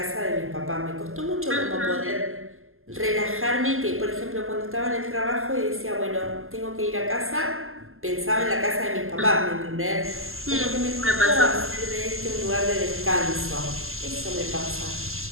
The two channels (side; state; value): left; late; 0.62 ms